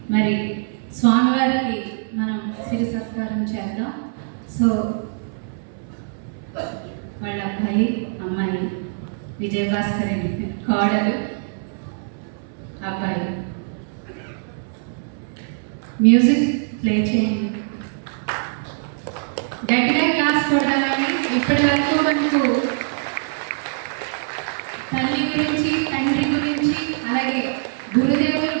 మరి స్వామివారికి మనం సిరి సత్కారం చేద్దాం. సో వాళ్ళ అబ్బాయి అమ్మాయి విజయభాస్కర్ అండి, కోడలు అబ్బాయి. మ్యూజిక్ ప్లే చేయండి, గట్టిగా క్లాస్ కొడదామని. ఇప్పటి వరకు మనకు తల్లి గురించి, తండ్రి గురించి, అలాగే గురుదేవులు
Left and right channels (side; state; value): left; silent; 64 dB below the other